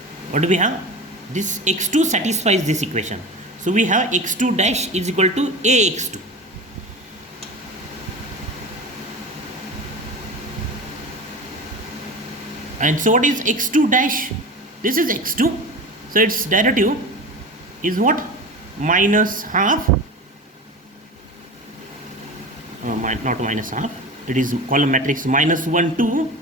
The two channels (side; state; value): both; normal; correlation 0.31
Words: what do we have? This x2 satisfies this equation, so we have x2 dash is equal to ax2. And so what is x2 dash? This is x2, so its derivative is what? Minus half, not minus half, it is column matrix minus 1, 2,